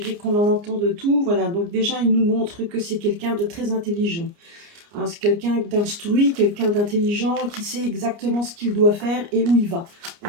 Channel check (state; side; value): late; left; 29 ms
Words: qu'on en entend de tout. Voilà. Donc déjà, il nous montre que c'est quelqu'un de très intelligent, hein. C'est quelqu'un d'instruit, quelqu'un d'intelligent qui sait exactement ce qu'il doit faire et où il va.